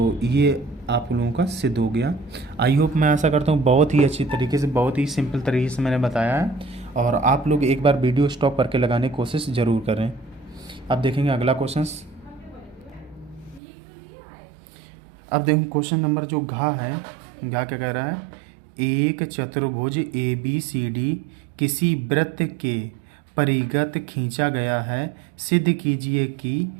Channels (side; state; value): left; drops out; at 13.6 s